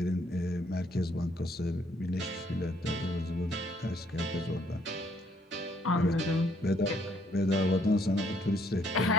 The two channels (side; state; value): both; normal; correlation 0.68